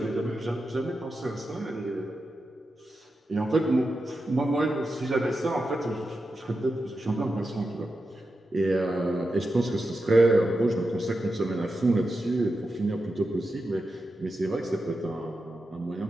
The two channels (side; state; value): both; normal; correlation 0.89